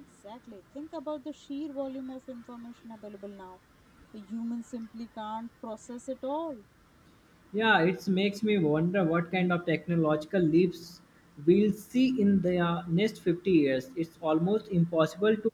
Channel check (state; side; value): identical; both; correlation 1.00